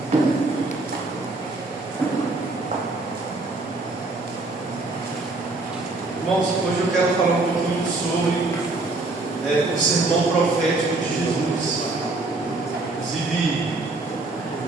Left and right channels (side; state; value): left; quieter; 3.2 dB